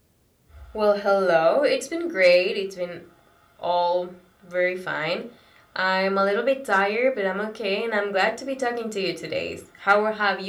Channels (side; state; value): both; identical; correlation 1.00